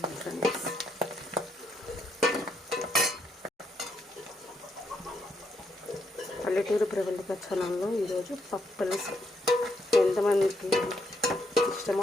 ఫ్రెండ్స్, పల్లెటూరు ప్రవళిక ఛానల్లో ఈరోజు పప్పుల్స్ ఎంతమందికి ఇష్టమో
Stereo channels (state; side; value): normal; both; correlation 0.77